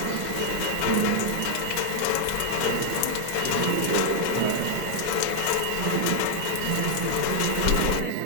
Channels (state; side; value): different; both; correlation 0.00